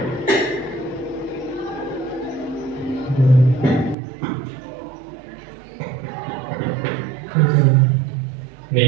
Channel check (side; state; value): left; drops out; at 4.0 s